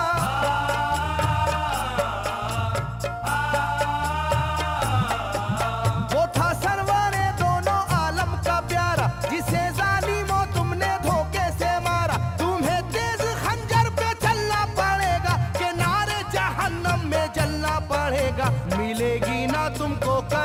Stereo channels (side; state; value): both; identical; correlation 1.00